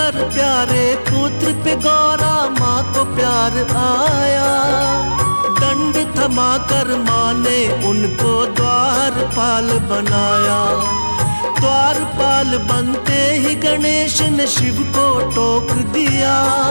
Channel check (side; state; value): both; inverted; correlation -1.00